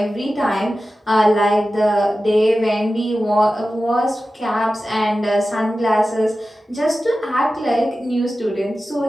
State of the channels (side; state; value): both; normal; correlation 0.94